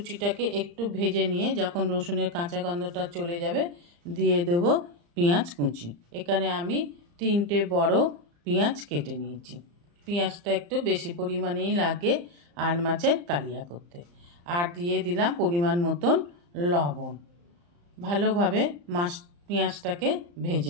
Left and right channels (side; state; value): left; late; 35 ms